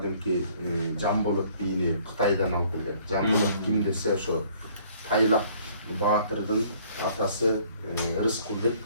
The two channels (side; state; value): both; inverted; correlation -0.59